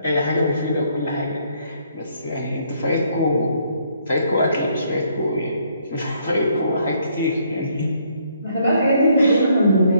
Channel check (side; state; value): both; inverted; correlation -0.69